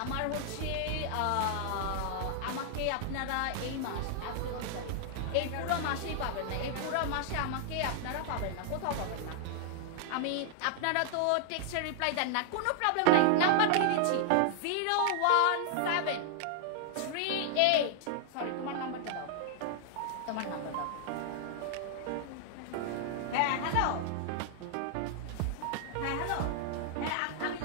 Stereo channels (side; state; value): both; different; correlation -0.01